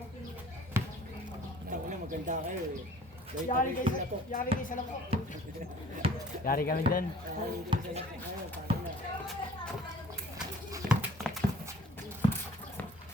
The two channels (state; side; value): normal; both; correlation 0.51